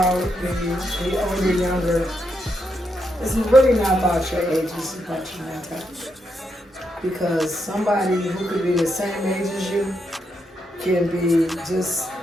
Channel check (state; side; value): normal; both; correlation 0.81